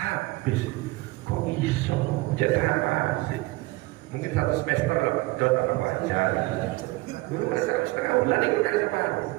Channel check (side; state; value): left; quieter; 21.5 dB